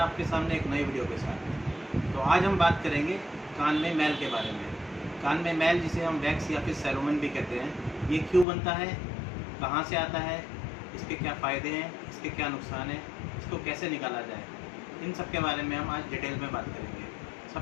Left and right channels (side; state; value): right; drops out; at 8.5 s